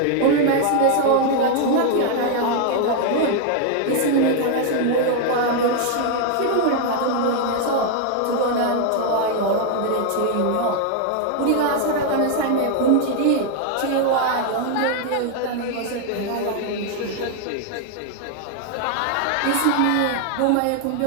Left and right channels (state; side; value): different; both; correlation 0.00